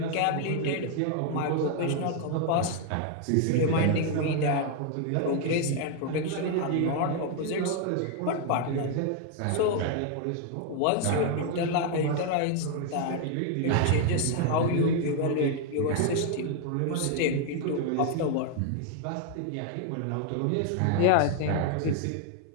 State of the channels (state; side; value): different; both; correlation 0.00